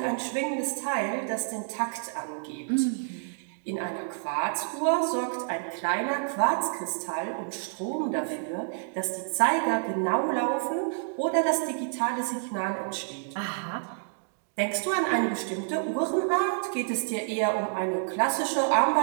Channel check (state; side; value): silent; left; digital silence